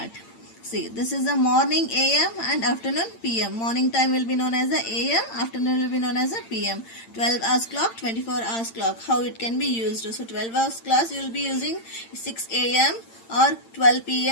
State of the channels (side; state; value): right; late; 8.8 ms